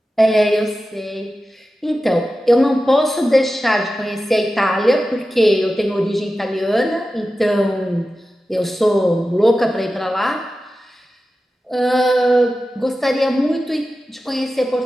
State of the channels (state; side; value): normal; both; correlation 0.93